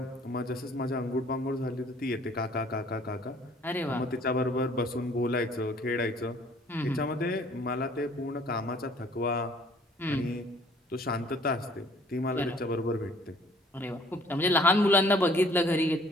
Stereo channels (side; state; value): both; normal; correlation 0.57